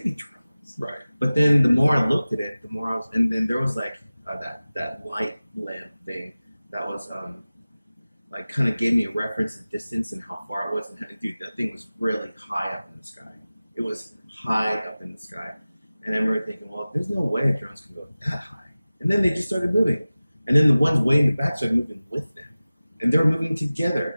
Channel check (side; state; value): both; inverted; correlation -0.97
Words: be drones. Right. But then the more I looked at it, the more and then there was like that light lamp thing that was like kind of gave me a reference of distance and how far it was. And dude, that thing was really high up in the sky. It was high up in the sky. And I remember thinking, well, there's no way drones can go that high. And then they just started moving. And then the ones way in the back started moving with them. And they were moving